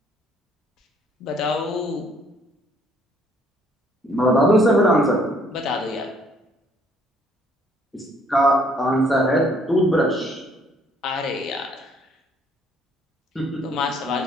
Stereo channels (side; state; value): both; normal; correlation 0.64